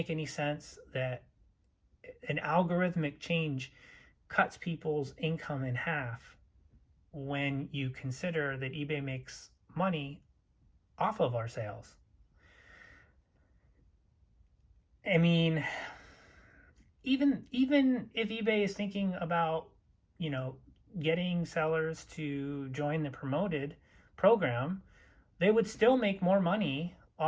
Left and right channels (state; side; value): identical; both; correlation 1.00